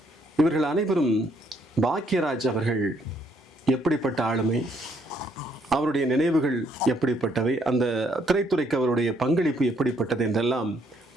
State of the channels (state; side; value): normal; both; correlation 0.69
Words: இவர்கள் அனைவரும் பாக்யராஜ் அவர்கள் எப்படிப்பட்ட ஆளுமை, அவருடைய நினைவுகள் எப்படிப்பட்டவை, அந்த திரைத்துறைக்கு அவருடைய பங்களிப்பு எப்படிப்பட்டது என்றெல்லாம்